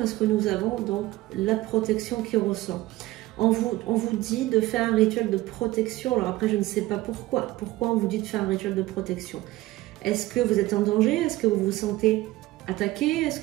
que nous avons donc la protection qui ressort. On vous dit de faire un rituel de protection. Alors après, je ne sais pas pourquoi. Pourquoi on vous dit de faire un rituel de protection? Est-ce que vous êtes en danger? Est-ce que vous vous sentez attaqué? Est-ce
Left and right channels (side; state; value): left; quieter; 17.7 dB